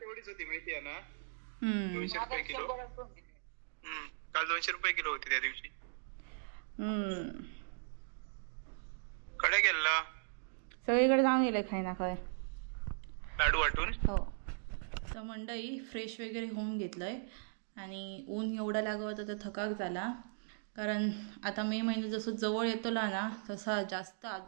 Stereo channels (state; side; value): silent; left; digital silence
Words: होती माहिती आहे ना. 200 रुपये किलो. काल 200 रुपये किलो होती त्या दिवशी. कडे गेला सगळीकडे जाऊन गेले खाय ना काय लाडू वाटून. हो. तर मंडळी फ्रेश वगैरे होऊन घेतलंय आणि ऊन एवढा लागत होता तर थकाक झाला. कारण आता मे महिना जसं जवळ येतोला ना तसा जास्त